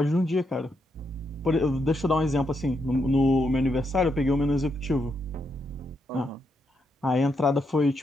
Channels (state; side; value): normal; both; correlation 0.80